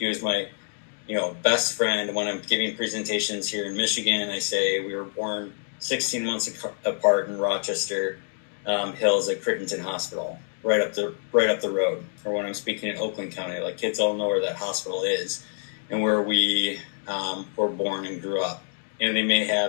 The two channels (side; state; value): right; silent; 61 dB below the other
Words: was my best friend. When I'm giving presentations here in Michigan, I say we were born 16 months apart in Rochester Hills at Crittenton Hospital, right up the road. Or when I'm speaking in Oakland County, like kids all know where that hospital is and where we were born and grew up. And they may